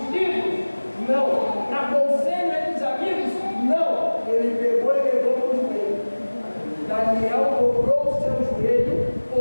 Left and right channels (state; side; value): inverted; both; correlation -1.00